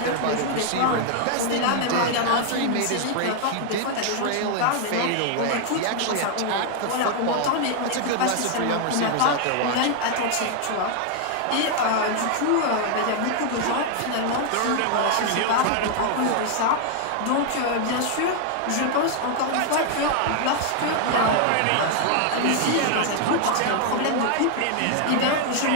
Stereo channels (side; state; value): both; different; correlation 0.00